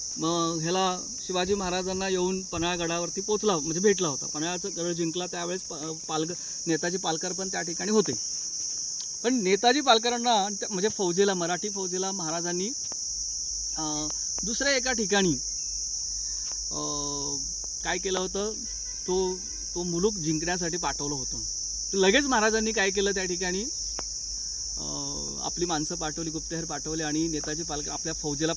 ह्याला शिवाजी महाराजांना येऊन पन्हाळगडावरती पोचला, म्हणजे भेटला होता. पन्हाळ्याचं गड जिंकला त्यावेळेस नेताजी पालकर पण त्या ठिकाणी होते. पण नेताजी पालकरांना म्हणजे फौजेला, मराठी फौजेला महाराजांनी दुसऱ्या एका ठिकाणी काय केलं होतं, तो मुलूक जिंकण्यासाठी पाठवलं होतं. तर लगेच महाराजांनी काय केलं, त्या ठिकाणी आपली माणसं पाठवली, गुप्तहेर पाठवले आणि नेताजी पालकर आपल्या फौजेला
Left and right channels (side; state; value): both; identical; correlation 1.00